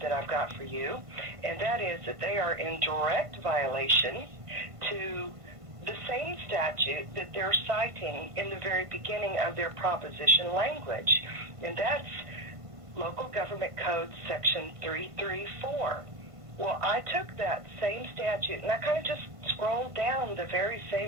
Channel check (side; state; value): left; late; 1.5 ms